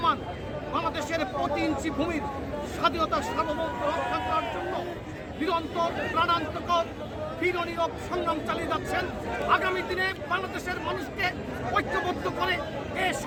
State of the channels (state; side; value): identical; both; correlation 1.00